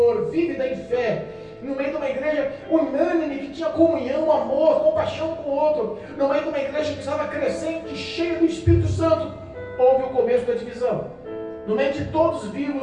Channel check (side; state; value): both; identical; correlation 1.00